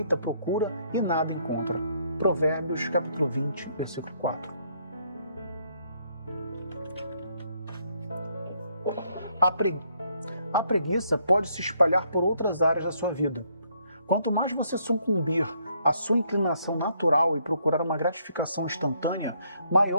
procura e nada encontra. Provérbios, capítulo 20, versículo 4. A preguiça pode se espalhar por outras áreas da sua vida. Quanto mais você sucumbir à sua inclinação natural e procurar uma gratificação instantânea,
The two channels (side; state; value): both; inverted; correlation -0.70